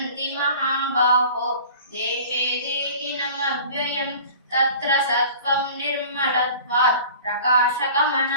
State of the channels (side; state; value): both; inverted; correlation -0.43